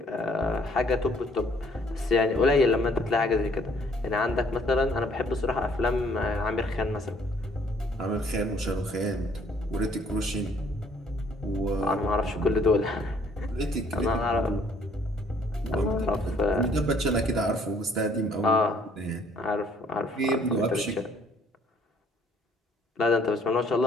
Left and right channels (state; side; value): normal; both; correlation 0.62